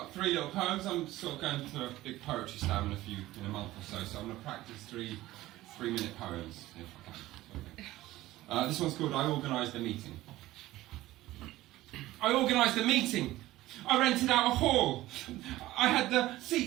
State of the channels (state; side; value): quieter; left; 16.6 dB